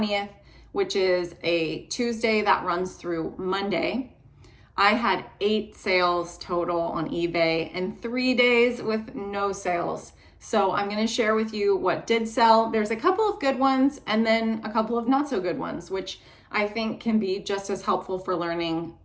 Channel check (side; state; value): both; identical; correlation 1.00